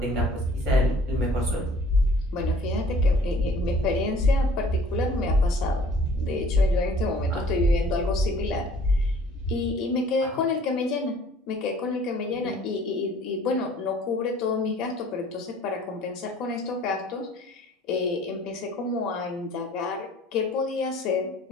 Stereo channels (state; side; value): normal; both; correlation 0.53